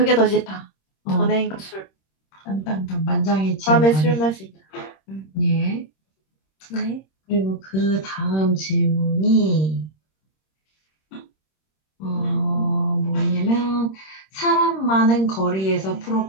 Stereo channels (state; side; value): late; right; 26 ms